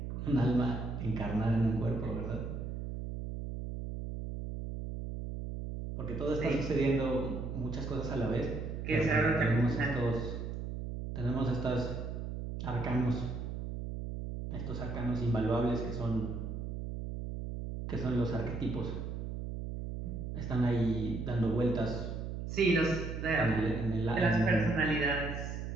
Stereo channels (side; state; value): right; noise; hum, 5 dB below the sound